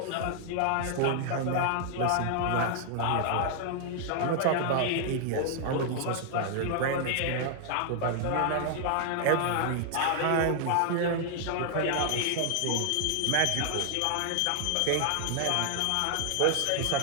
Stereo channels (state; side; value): different; both; correlation -0.01